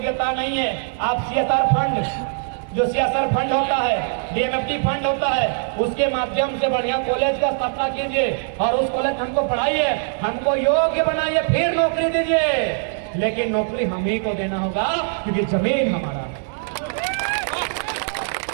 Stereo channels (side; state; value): left; silent; 64 dB below the other